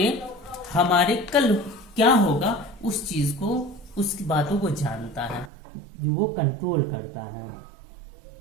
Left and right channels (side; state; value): left; drops out; at 5.5 s